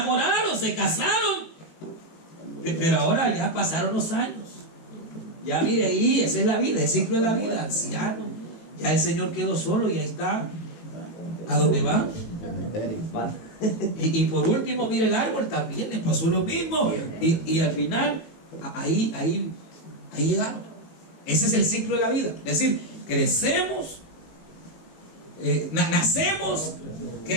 se casaron, pero ahora ya pasaron los años. Ya mire ahí, esa es la vida, el ciclo de la vida, anciano. Ya el Señor quedó solo y ahí está. ¿A dónde va? Y por último, mire el árbol, también le pasó lo mismo. Y al final, ahí llegaron. Ese es el ciclo de la vida. Es decir, crecemos. Nacemos,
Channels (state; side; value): late; right; 18 ms